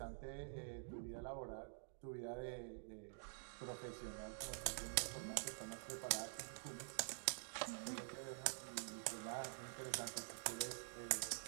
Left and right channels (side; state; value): left; silent; digital silence